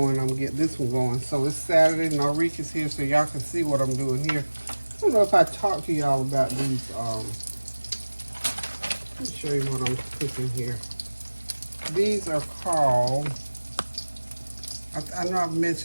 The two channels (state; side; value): inverted; both; correlation -1.00